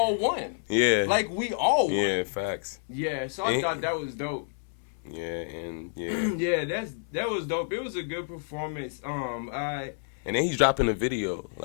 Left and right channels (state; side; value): silent; right; digital silence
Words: won. Yeah. Like we all won. Yeah, facts. Yeah. So I thought that was dope. Yeah, and yeah. Yeah, that was dope. It was a good performance. And then he's dropping a video,